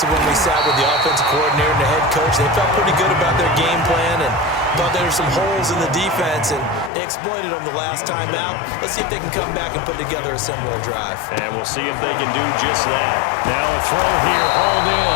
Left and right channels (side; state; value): right; drops out; at 6.9 s